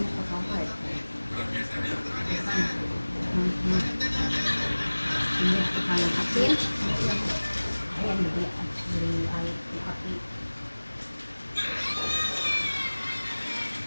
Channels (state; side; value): inverted; both; correlation -1.00